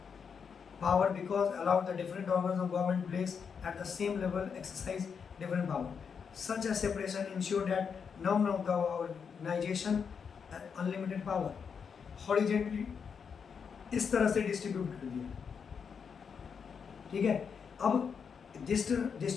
power because allowed the different organs of government place at the same level exercise different power. Such a separation ensured that none of the organization had unlimited power. Horizontally इस तरह से डिस्ट्रीब्यूट कर दिया। ठीक है, अब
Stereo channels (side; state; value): right; quieter; 6.4 dB